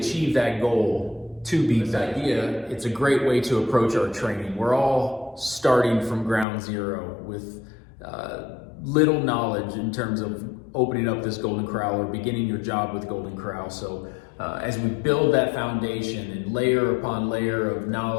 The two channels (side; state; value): right; drops out; at 6.5 s